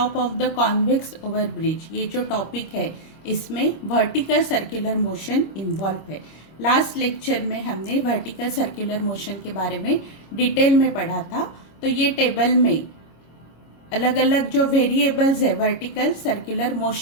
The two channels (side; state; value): right; late; 26 ms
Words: of the convex overbridge, ये जो टॉपिक है इसमें वर्टिकल सर्कुलर मोशन इन्वॉल्व है। लास्ट लेक्चर में हमने वर्टिकल सर्कुलर मोशन के बारे में डिटेल में पढ़ा था। तो ये टेबल में अलग अलग जो वेरिएबल्स है वर्टिकल सर्कुलर